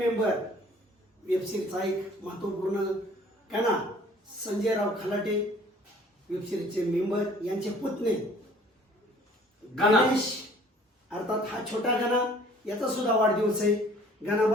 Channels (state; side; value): normal; both; correlation 0.53